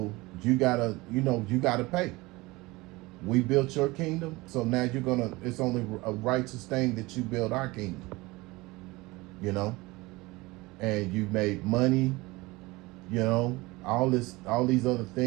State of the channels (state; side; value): quieter; left; 22.0 dB